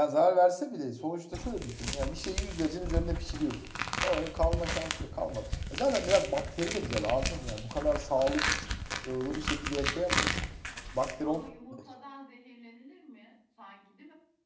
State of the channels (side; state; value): both; identical; correlation 1.00